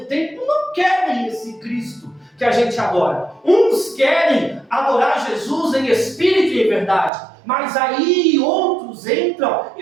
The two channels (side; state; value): left; drops out; at 7.1 s